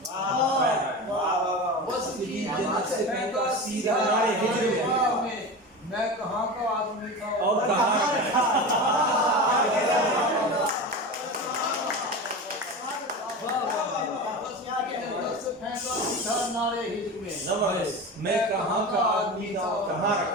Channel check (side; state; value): both; normal; correlation 0.27